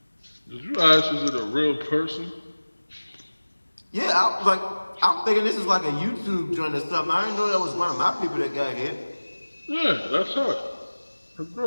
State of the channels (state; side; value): inverted; both; correlation -1.00